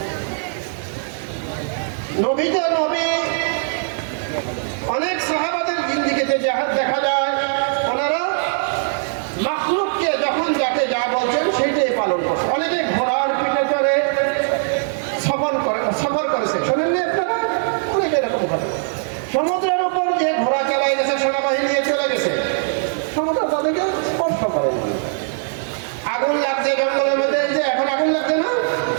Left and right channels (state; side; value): silent; left; 63 dB below the other